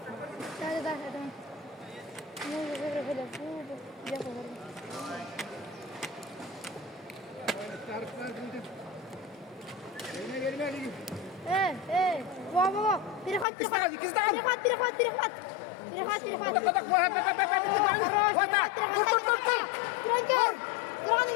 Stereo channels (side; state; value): right; drops out; at 13.5 s